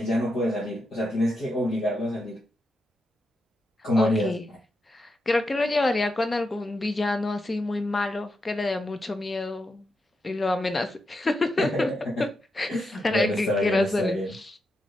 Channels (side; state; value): both; normal; correlation 0.85